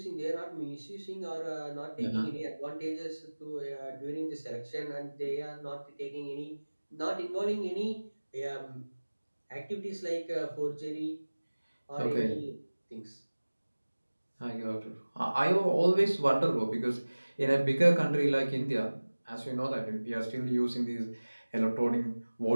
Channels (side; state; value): both; inverted; correlation -1.00